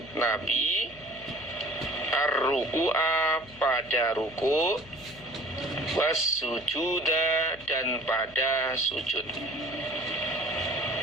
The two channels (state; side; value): noise; left; hum, 22 dB below the sound